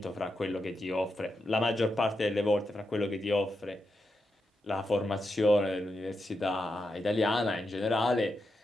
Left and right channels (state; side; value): normal; both; correlation 0.86